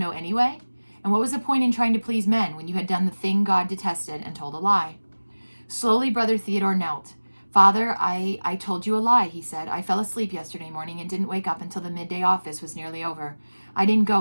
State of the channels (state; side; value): inverted; both; correlation -1.00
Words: anyway? And what was the point in trying to please men when you had done the thing God detested and told a lie? Slowly, Brother Theodore knelt. Father, I told you a lie, he said. I fell asleep yesterday morning and didn't wake up until the midday office was nearly over. I didn't